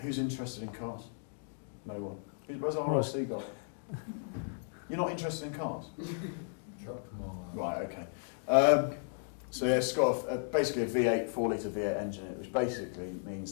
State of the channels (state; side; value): silent; right; digital silence